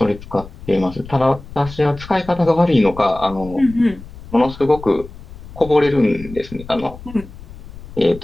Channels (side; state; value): left; noise; rumble, 15 dB below the sound